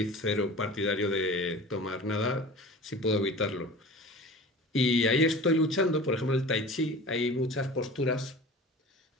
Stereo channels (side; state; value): both; normal; correlation 0.38